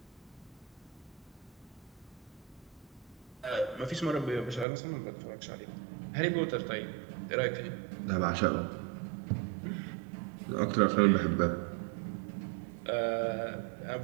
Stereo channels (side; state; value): left; drops out; at 4.7 s